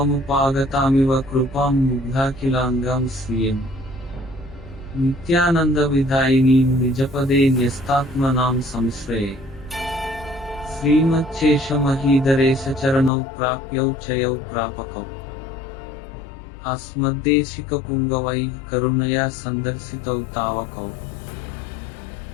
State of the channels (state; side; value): drops out; right; at 13.1 s